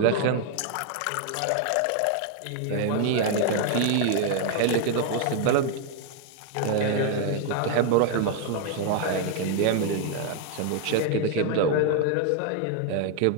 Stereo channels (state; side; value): different; both; correlation 0.01